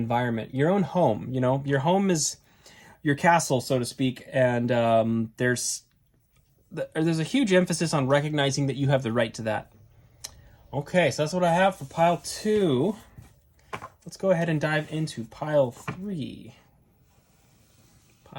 your own home. You know, your home is your castle, so to speak, and there's a huge emphasis on recognizing that you have the right to that. Okay, so that's what I have for pile 2. Let's go ahead and dive into pile 3.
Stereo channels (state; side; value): identical; both; correlation 1.00